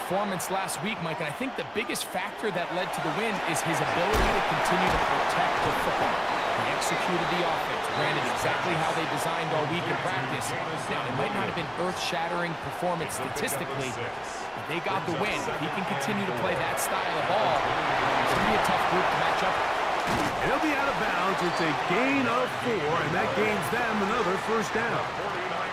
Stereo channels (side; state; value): both; identical; correlation 1.00